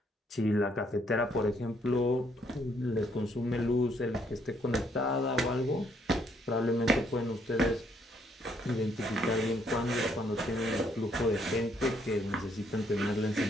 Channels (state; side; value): normal; both; correlation 0.70